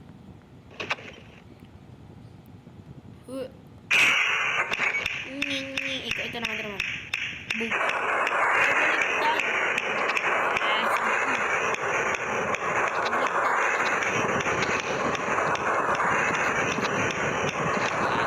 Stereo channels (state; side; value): identical; both; correlation 1.00